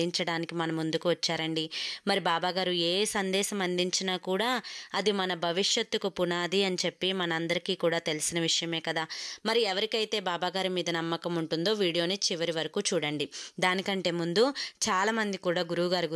మన ముందుకు వచ్చారండి. మరి బాబాగారు ఏ సందేశం అందించినా కూడా అది మన భవిష్యత్తుకు పునాది అని చెప్పి మనందరికీ కూడా తెలిసిన విషయమే కదా. మరి ఎవరికైతే బాబాగారి మీద నమ్మకం ఉంటుందో వీడియోని చివరి వరకు చూడండి. దానికంటే ముందు చాలామంది కూడా గురువుగారి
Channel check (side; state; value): both; identical; correlation 1.00